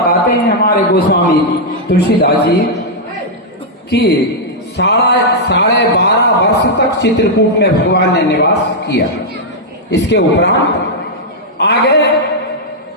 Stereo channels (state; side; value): normal; both; correlation -0.05